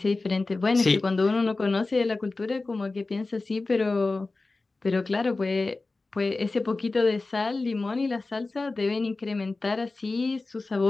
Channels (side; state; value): right; quieter; 3.4 dB